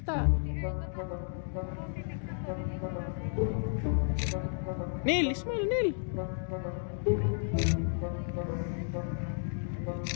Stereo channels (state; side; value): silent; right; 56 dB below the other